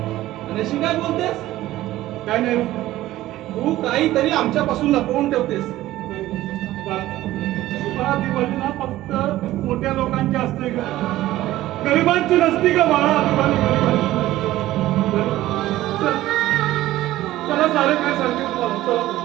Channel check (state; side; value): quieter; left; 15.5 dB